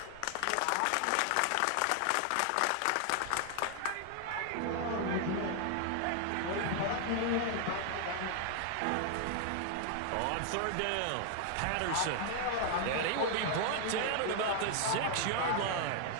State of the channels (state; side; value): different; both; correlation 0.00